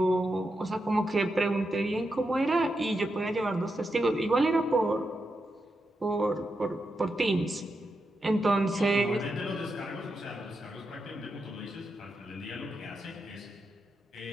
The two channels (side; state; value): both; normal; correlation 0.86